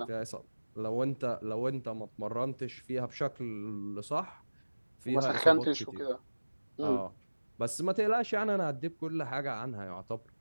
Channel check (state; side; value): inverted; both; correlation -1.00